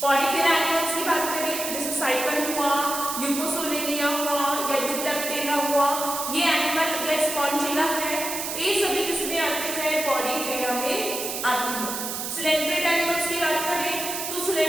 पॉलीफेरा एनिमल्स की बात करें तो जैसे साइकन हुआ, ल्यूकोसोलेनिया हुआ या यूप्लेक्टेला हुआ, ये एनिमल या स्पॉन्जिला है, ये सभी किसमें आते हैं, पॉलीफेरा में आते हैं। सिलेंड्रेटा एनिमल्स की बात करें तो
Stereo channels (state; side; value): noise; right; hiss, 4 dB below the sound